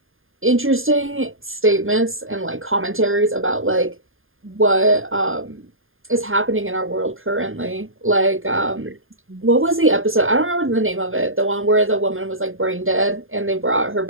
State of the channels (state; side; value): late; left; 0.59 ms